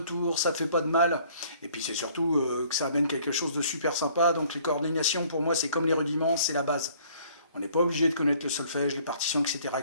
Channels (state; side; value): inverted; both; correlation -0.58